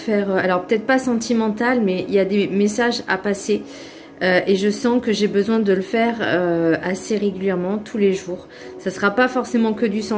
alors peut-être pas sentimental, mais il y a des messages à passer et je sens que j'ai besoin de le faire assez régulièrement, tous les jours. Ça sera pas forcément que du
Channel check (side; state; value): both; identical; correlation 1.00